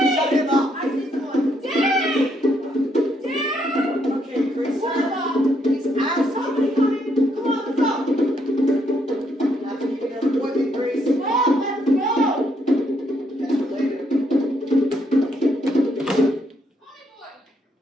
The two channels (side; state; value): both; normal; correlation 0.74